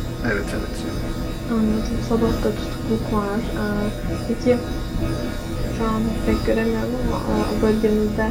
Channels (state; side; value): identical; both; correlation 1.00